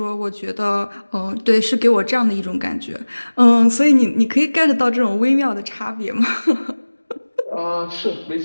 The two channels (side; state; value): both; inverted; correlation -1.00